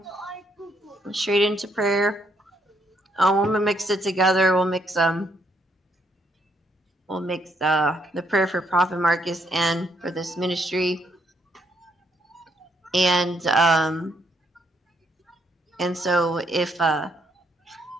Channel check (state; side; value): normal; both; correlation 0.73